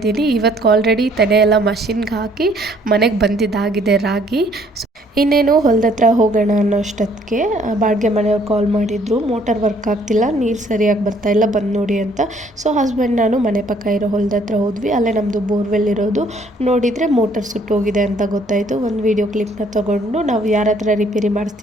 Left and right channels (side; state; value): both; normal; correlation 0.63